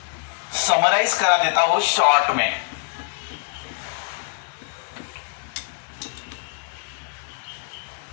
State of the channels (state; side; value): silent; right; 62 dB below the other